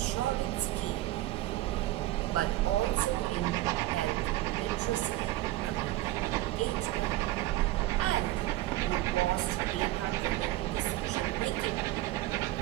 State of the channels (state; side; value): quieter; left; 16.5 dB